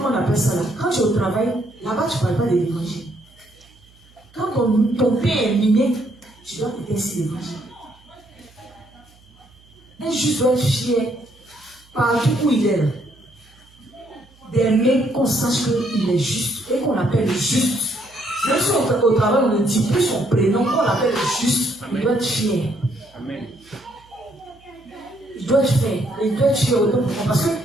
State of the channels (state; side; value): noise; right; hum, 28 dB below the sound